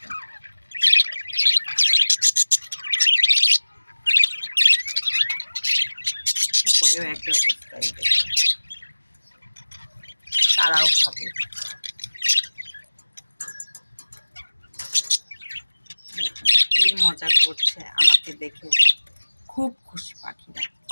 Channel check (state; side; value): inverted; both; correlation -1.00